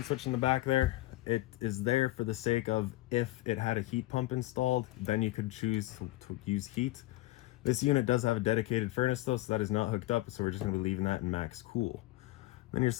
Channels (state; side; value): quieter; right; 17.7 dB